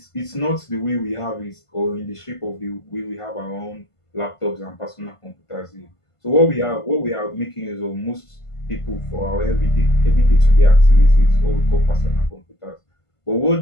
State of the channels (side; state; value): right; late; 1.5 ms